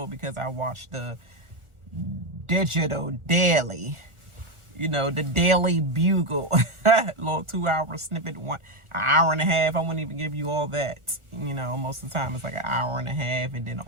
because I watched the digital daily, you know, the Daily Bugle, little 2-hour snippet, an hour and a half. I wouldn't even give you all that, you know. Most of the time it's like an hour and a half, and then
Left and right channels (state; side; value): late; left; 1.4 ms